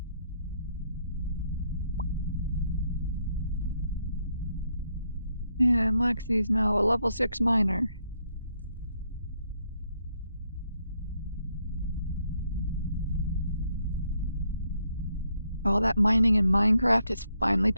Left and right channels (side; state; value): both; inverted; correlation -0.75